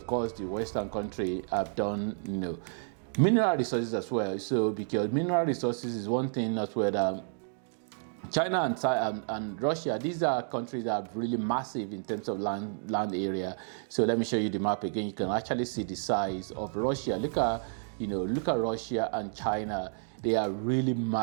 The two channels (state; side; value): silent; left; digital silence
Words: course, the Western country have done, mineral resources as well. So because mineral resources is one thing as well that China and Russia, these are countries that are really massive in terms of land area. So let me show you the map again. You can actually see the size of Russia. Look at Russia and China. They are really